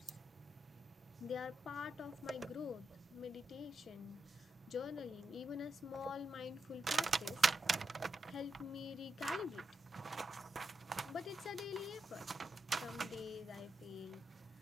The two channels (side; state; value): both; normal; correlation 0.85